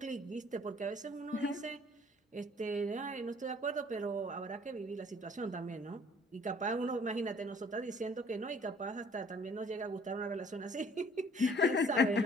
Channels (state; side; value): normal; both; correlation 0.57